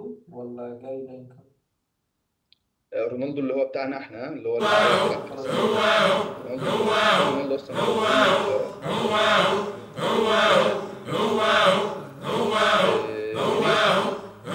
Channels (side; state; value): both; identical; correlation 1.00